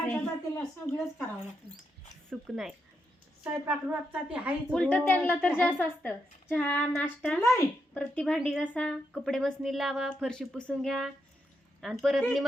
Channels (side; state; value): both; normal; correlation 0.82